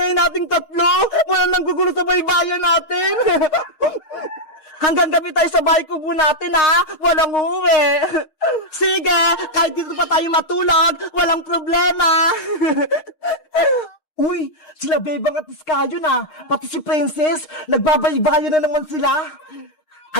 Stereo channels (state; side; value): late; right; 6.5 ms